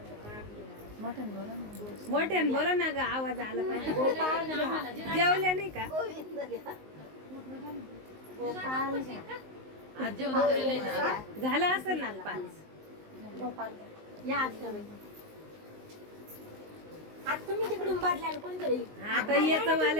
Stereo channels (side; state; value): left; late; 19 ms